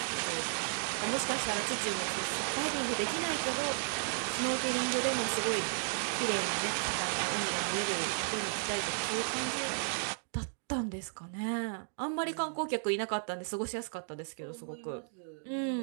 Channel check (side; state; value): left; silent; digital silence